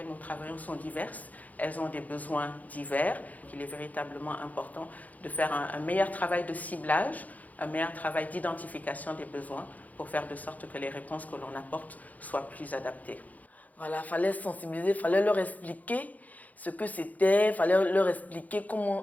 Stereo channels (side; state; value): right; late; 0.078 ms